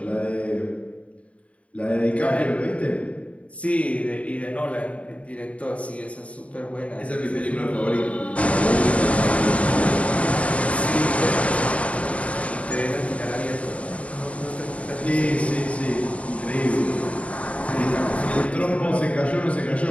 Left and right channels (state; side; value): late; right; 0.065 ms